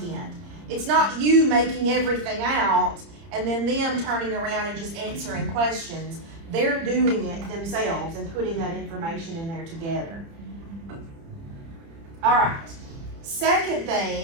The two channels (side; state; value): left; late; 30 ms